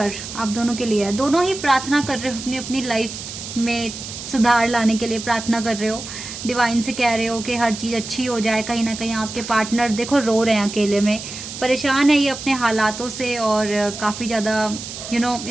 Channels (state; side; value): noise; right; hiss, 10 dB below the sound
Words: आप दोनों के लिए है। दोनों ही प्रार्थना कर रहे हो अपनी अपनी लाइफ में सुधार लाने के लिए, प्रार्थना कर रहे हो, डिवाइन से कह रहे हो कि हर चीज़ अच्छी हो जाए। कहीं ना कहीं आपके पार्टनर देखो रो रहे हैं, अकेले में परेशान है ये अपने हालातों से, और काफ़ी ज़्यादा